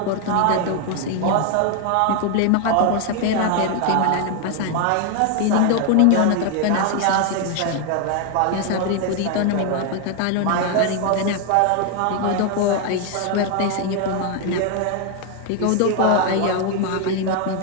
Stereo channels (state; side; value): different; both; correlation 0.00